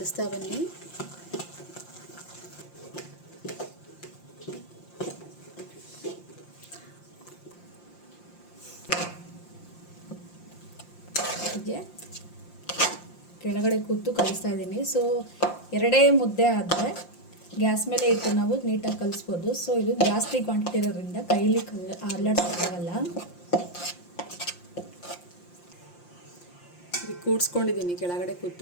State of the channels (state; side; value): late; right; 5.7 ms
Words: ಬನ್ನಿ. ಕೆಳಗಡೆ ಕೂತು ಕಲಿಸ್ತಾ ಇದ್ದೀನಿ. ಸೊ 2 ಮುದ್ದೆ ಆದರೆ ಗ್ಯಾಸ್ ಮೇಲೆ ಇಟ್ಟು ನಾವು ನೀಟಾಗಿ ಕಲಿಸ್ಬೋದು. ಸೊ ಇದು ಜಾಸ್ತಿ ಕ್ವಾಂಟಿಟಿ ಇರೋದ್ರಿಂದ ಕೈಲಿ ಅಲ್ಲಾಡ್ಸೋಕ್ಕಾಗಲ್ಲ. ಇದು ಕೂಡಿಸ್ಕೊಂಡಿದ್ದೀನಿ ಕೆಳಗಡೆ